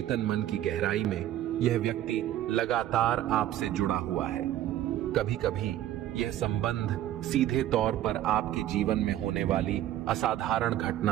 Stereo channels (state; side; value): quieter; left; 12.7 dB